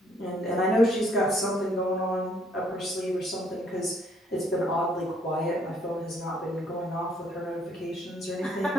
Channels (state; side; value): normal; both; correlation 0.66